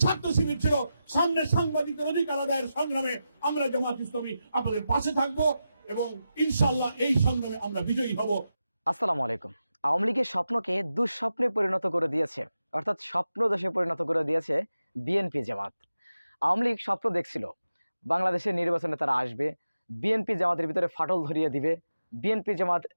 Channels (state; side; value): inverted; both; correlation -0.90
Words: ছাত্র শিবির ছিল। সামনে সাংবাদিকদের অধিকার আদায়ের সংগ্রামে আমরা জামাত ইসলামী আপনাদের পাশে থাকবো এবং ইনশাআল্লাহ এই সংগ্রামে আমরা বিজয়ী হব। আসসালামু আলাইকুম। আওয়ামী লীগের স্বপ্নকে দুঃস্বপ্নে পরিণত করে দিয়েছে, অর্থাৎ স্বপ্ন দোষে পরিণত করে দিয়েছে বিএনপি জামাত। আওয়ামী লীগ স্বপ্ন দেখছিল বাংলাদেশের নির্বাচনে তারা আসবে, বিএনপি জামাতের ভিতরে ফাটল ধরিয়ে দিবে, বিএনপি জামাত